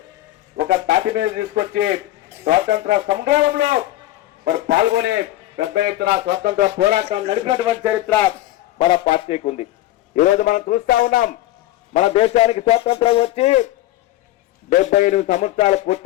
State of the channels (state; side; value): quieter; right; 15.4 dB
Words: ఒక తాటి మీద తీసుకొచ్చి స్వాతంత్ర సంగ్రామంలో మరి పాల్గొని పెద్ద ఎత్తున స్వతంత్ర పోరాటం నడిపినటువంటి చరిత్ర మన పార్టీకి ఉంది. ఈరోజు మనం చూస్తా ఉన్నాం, మన దేశానికి స్వాతంత్రం వచ్చి 78 సంవత్సరాలు